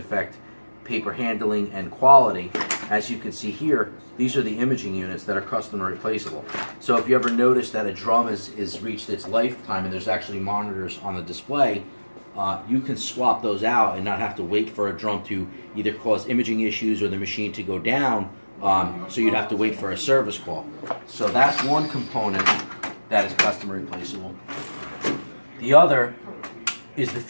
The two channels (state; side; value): inverted; both; correlation -1.00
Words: paper handling and quality. As you can see here, these are the imaging units that are custom replaceable. So if you ever notice that a drum is reached its lifetime and there's actually monitors on the display, you can swap those out and not have to wait for a drum to either cause imaging issues or the machine to go down, so you'd have to wait for a service call. So that's one component that is custom replaceable. The other is the